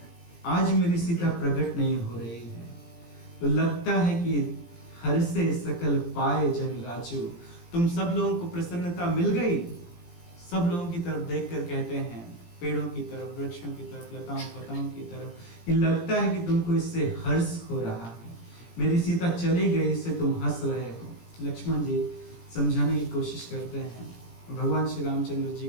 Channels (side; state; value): right; late; 17 ms